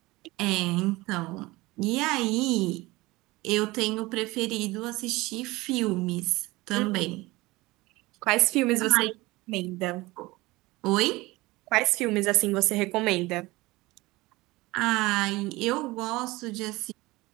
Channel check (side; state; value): left; quieter; 20.9 dB